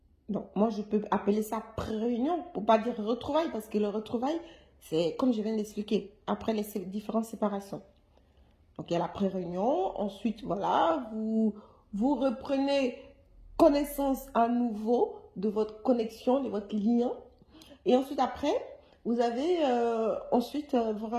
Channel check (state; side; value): identical; both; correlation 1.00